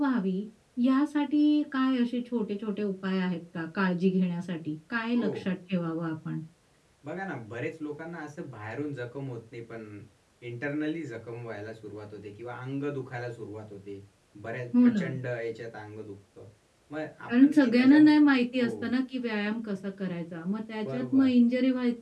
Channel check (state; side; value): identical; both; correlation 1.00